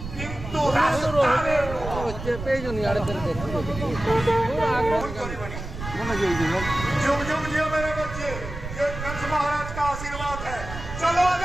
কিন্তু রাস্তায় পেজনি আড়ে ধরে जुग जुग जियो मेरे बच्चे, ये कंस महाराज का आशीर्वाद है। चलो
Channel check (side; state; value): right; noise; rumble, 9 dB below the sound